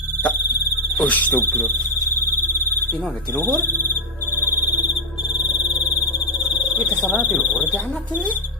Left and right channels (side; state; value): both; normal; correlation 0.03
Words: Astagfirullah. Ini ada di luhur. Kita salah di luhur di anak ini.